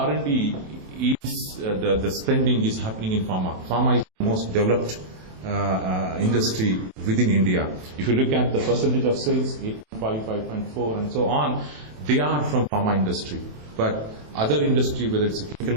is, the spending is happening in pharma. Pharma is the most developed industry within India. If you look at the percentage of sales, 8.5, 5.4 and so on, they are from pharma industry. But other industry, whether it's a chemical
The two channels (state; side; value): late; left; 27 ms